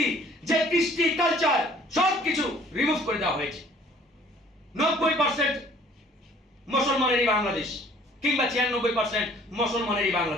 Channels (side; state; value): both; normal; correlation 0.56